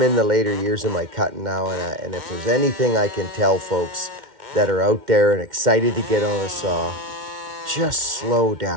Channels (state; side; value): late; left; 2.1 ms